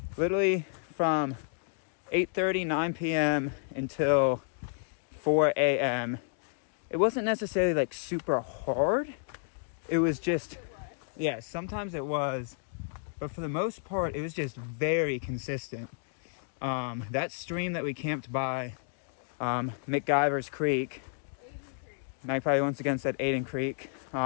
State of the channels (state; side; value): silent; right; digital silence